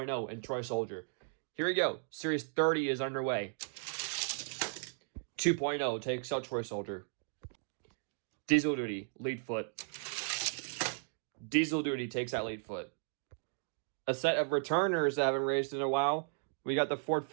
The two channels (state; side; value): silent; left; digital silence